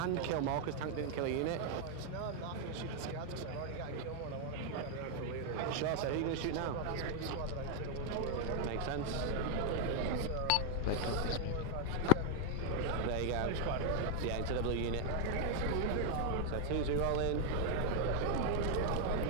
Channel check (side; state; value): both; different; correlation 0.00